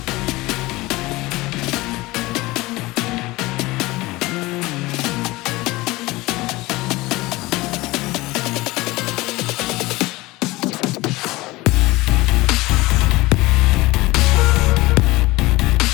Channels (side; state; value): right; quieter; 20.6 dB